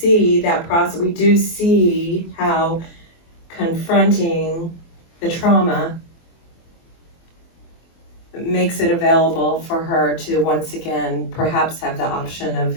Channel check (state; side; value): late; right; 24 ms